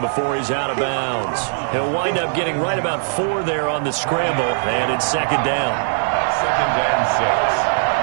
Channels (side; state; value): left; silent; digital silence